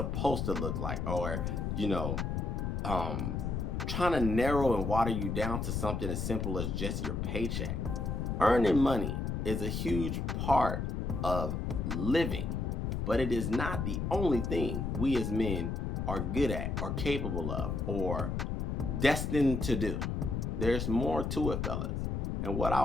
to look like, or trying to narrow and water you down to something as simple as just your paycheck. Earning money is a huge part of living, but it is not the only thing we as men are good at or capable of or destined to do. There's more to it, fellas. And what I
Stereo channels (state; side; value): noise; left; rumble, 1 dB below the sound